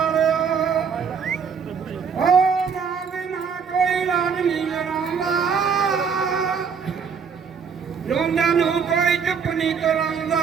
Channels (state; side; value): quieter; left; 6.3 dB